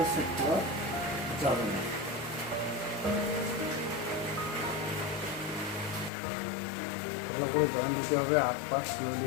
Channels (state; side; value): drops out; right; at 6.1 s